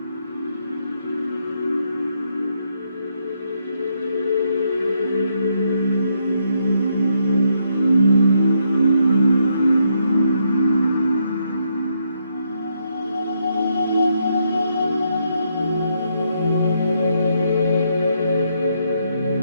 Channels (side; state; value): both; inverted; correlation -0.76